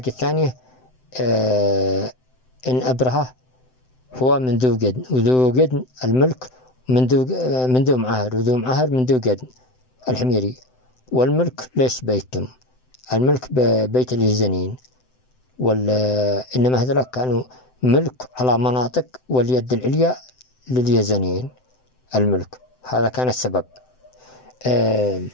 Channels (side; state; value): right; late; 7.8 ms